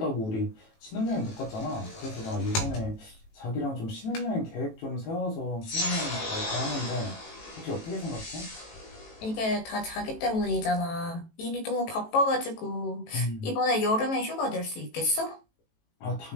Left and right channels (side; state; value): right; late; 18 ms